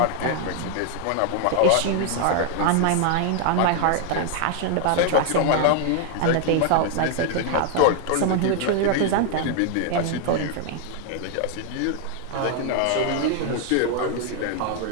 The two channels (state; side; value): different; both; correlation 0.00